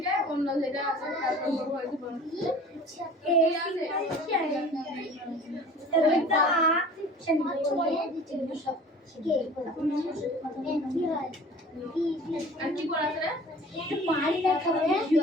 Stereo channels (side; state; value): both; normal; correlation 0.44